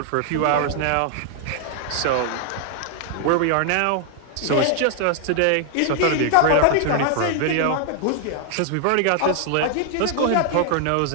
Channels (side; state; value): both; different; correlation 0.00